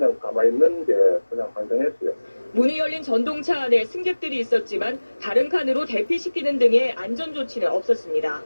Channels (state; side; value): inverted; both; correlation -1.00